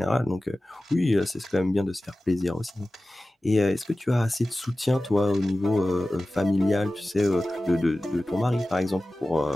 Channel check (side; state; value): both; normal; correlation 0.96